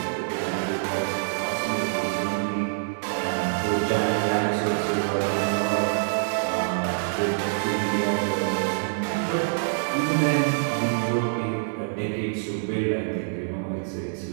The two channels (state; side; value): silent; left; 61 dB below the other